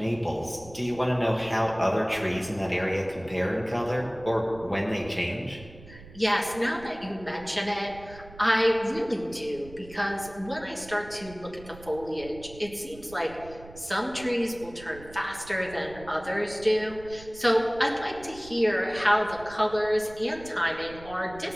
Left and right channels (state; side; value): noise; right; rumble, 18 dB below the sound